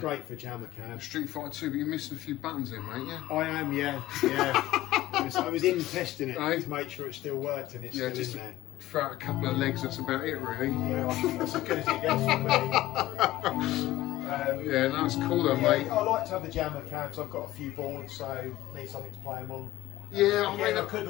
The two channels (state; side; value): quieter; right; 15.9 dB